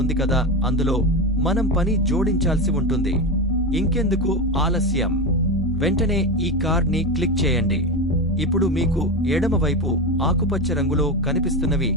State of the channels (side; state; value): both; normal; correlation 0.17